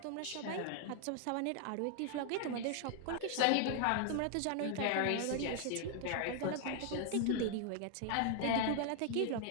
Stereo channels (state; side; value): different; both; correlation 0.00